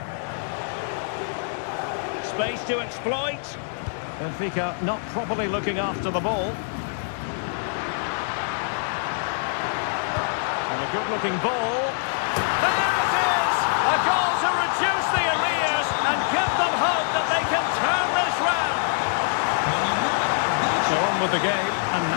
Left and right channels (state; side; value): silent; right; digital silence